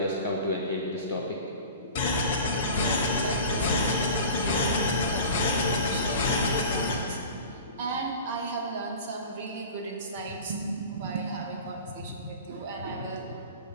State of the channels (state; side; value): inverted; both; correlation -0.37